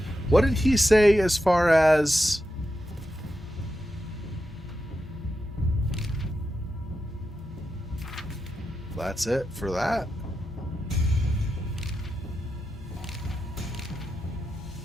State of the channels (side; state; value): both; normal; correlation 0.88